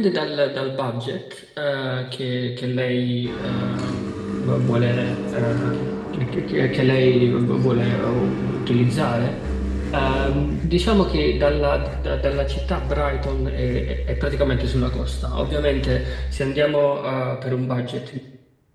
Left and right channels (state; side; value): identical; both; correlation 1.00